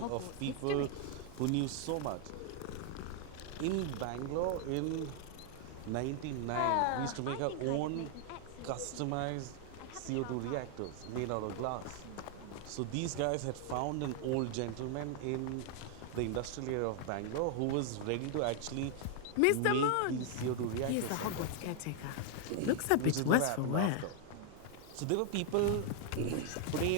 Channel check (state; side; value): different; both; correlation 0.00